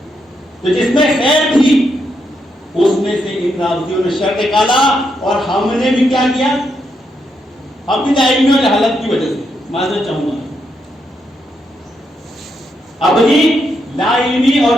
تو جس میں خیر تھی اس میں سے ان رافضیوں نے شر نکالا، اور ہم نے بھی کیا کیا؟ اپنی علمی اور جہالت کی وجہ سے، معذرت چاہوں گا، اپنی لا علمی اور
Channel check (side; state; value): both; normal; correlation 0.80